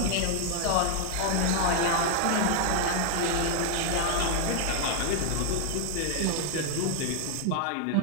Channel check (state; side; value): different; both; correlation 0.00